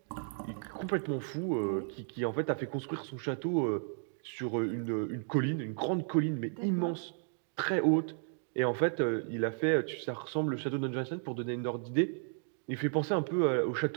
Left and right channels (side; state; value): left; silent; 55 dB below the other